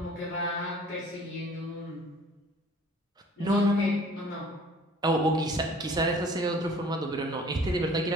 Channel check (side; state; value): both; normal; correlation 0.51